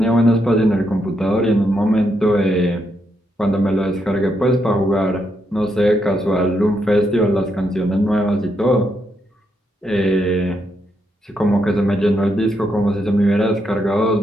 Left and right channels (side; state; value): both; normal; correlation 0.79